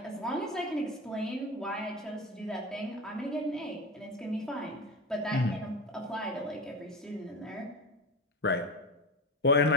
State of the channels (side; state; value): both; normal; correlation 0.24